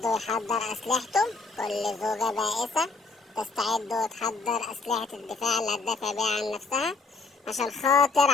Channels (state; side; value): quieter; right; 4.1 dB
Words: ويحضر أسلحته، كل زوجة بائسة تستعد وتحضر أسلحة الدفاع اللي هتدافع بيها عن نفسها عشان خاطر